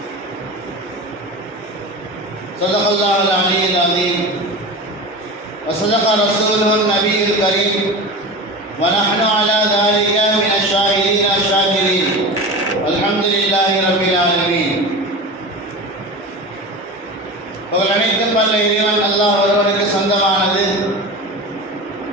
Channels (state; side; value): normal; both; correlation 0.29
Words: صدق الله العلي العظيم وصدق رسوله النبي الكريم ونحن على ذلك من الشاهدين الشاكرين والحمد لله رب العالمين. அனைத்தும் வல்ல இறைவன் அல்லாஹ் ஒருவனுக்கு சொந்தமானது.